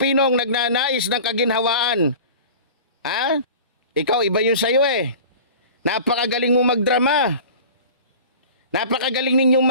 nagnanais ng kaginhawaan. Ikaw, iba yun sa'yo eh. Napakagaling mo magdrama. Napakagaling ninyong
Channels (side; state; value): both; inverted; correlation -0.39